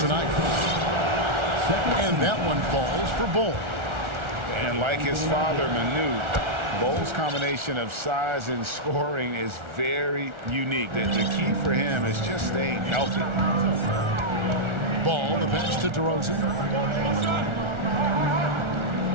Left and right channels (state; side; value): late; left; 1.4 ms